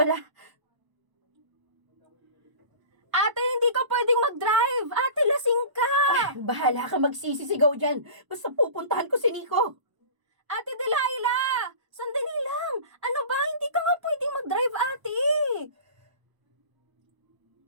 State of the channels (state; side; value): late; left; 1.0 ms